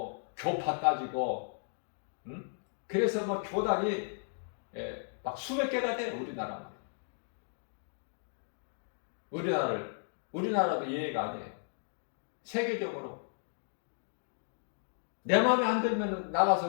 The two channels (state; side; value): silent; right; 55 dB below the other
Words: 교파 따지고 그래서 뭐 교단이 막 수백 개가 돼. 우리나라도 예외가 아니에요. 세계적으로 내 마음에 안 들면